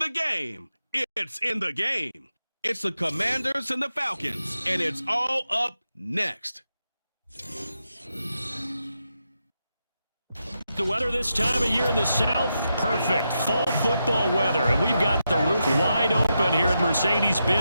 game, it's in the game. It's the Commanders and the Falcons, and it's all up next. The weather this time of year in the South, perfect. Fall football weather, and we've got the roof wide open here at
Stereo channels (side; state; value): both; inverted; correlation -0.86